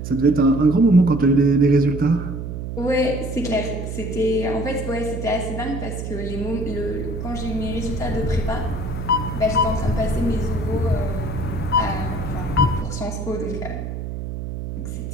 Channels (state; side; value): noise; right; hum, 6 dB below the sound